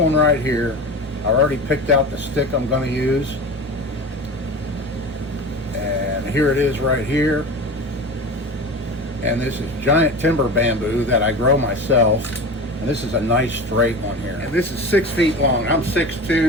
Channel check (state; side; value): noise; right; rumble, 27 dB below the sound